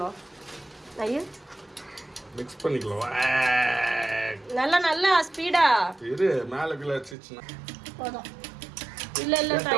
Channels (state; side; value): drops out; left; at 7.2 s